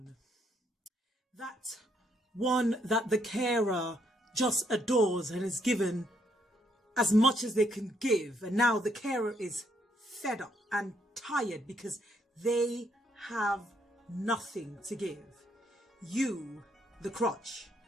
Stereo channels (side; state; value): both; normal; correlation 0.72